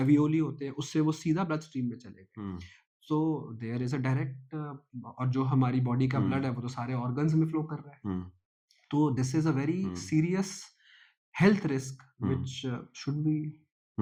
होते हैं उससे वो सीधा ब्लड स्ट्रीम में चले गए। हम्म, so there is a direct, और जो हमारी बॉडी का ब्लड है वो तो सारे ऑर्गन्स में फ्लो कर रहा है। हम्म, तो this is a very hmm, serious health risk hmm, which should be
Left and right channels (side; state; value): both; identical; correlation 1.00